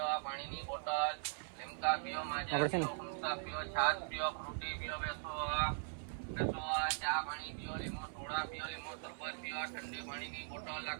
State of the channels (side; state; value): left; silent; 51 dB below the other